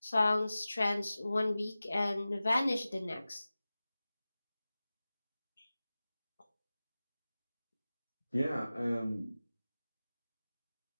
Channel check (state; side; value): inverted; both; correlation -0.96